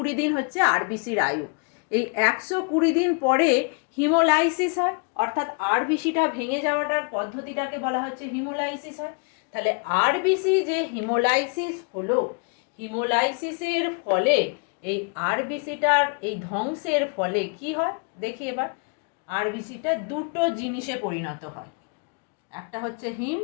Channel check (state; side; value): quieter; right; 36.4 dB